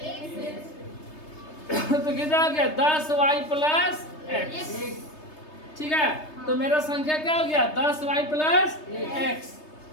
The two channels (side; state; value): right; late; 3.3 ms